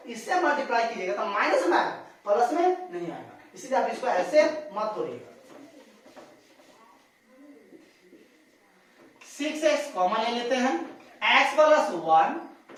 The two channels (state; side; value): identical; both; correlation 1.00